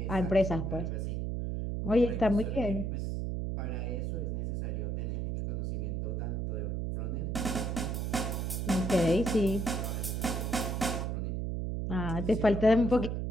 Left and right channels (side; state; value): right; noise; hum, 1 dB below the sound